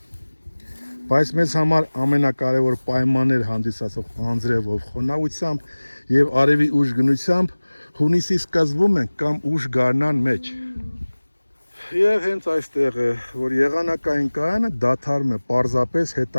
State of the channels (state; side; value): inverted; both; correlation -1.00